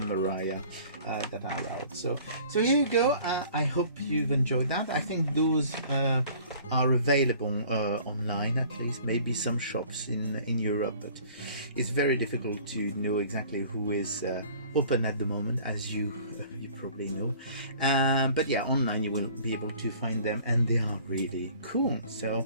Mariah that are out. So here you go. I hope you've enjoyed that. I think those are available online, at least, maybe some shops in Europe, but it's very difficult to know exactly who is open at the moment, as you probably know. But yeah, online you will be able to find them, and they are really cool. So,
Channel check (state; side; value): inverted; both; correlation -0.50